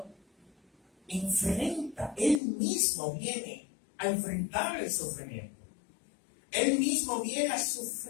enfrenta, Él mismo viene a enfrentar el sufrimiento. Él mismo viene a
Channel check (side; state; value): right; drops out; at 2.4 s